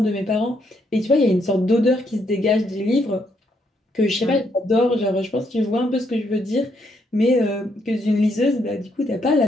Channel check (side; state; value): both; normal; correlation 0.75